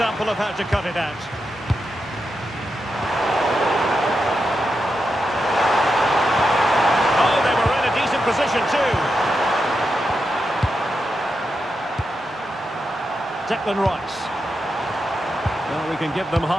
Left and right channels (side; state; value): both; normal; correlation 0.87